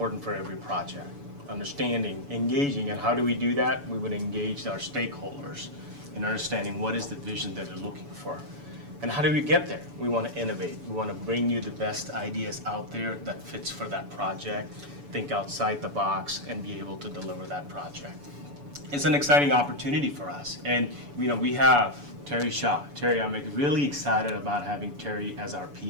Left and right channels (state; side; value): late; left; 7.0 ms